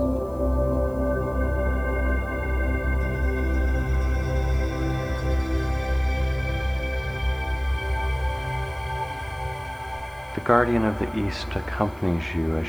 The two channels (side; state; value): left; noise; hiss, 28 dB below the sound